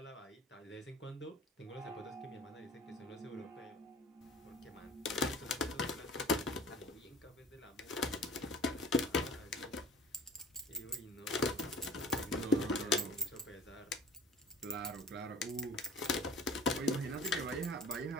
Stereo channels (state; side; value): normal; both; correlation 0.44